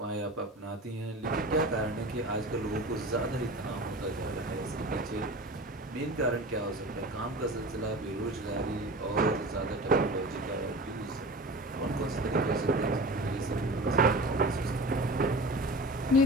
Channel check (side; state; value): both; normal; correlation 0.35